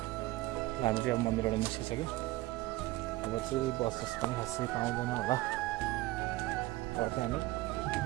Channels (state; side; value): quieter; left; 18.7 dB